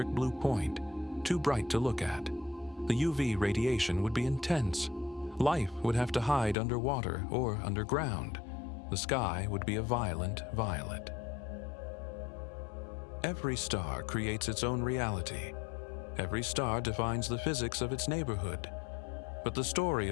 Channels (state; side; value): drops out; right; at 6.6 s